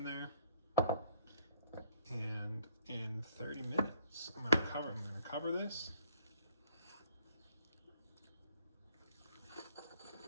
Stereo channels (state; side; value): inverted; both; correlation -0.64